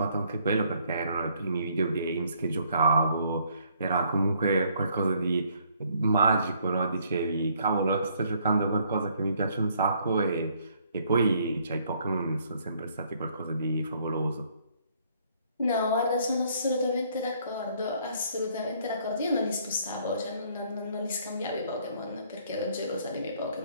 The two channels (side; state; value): both; inverted; correlation -0.65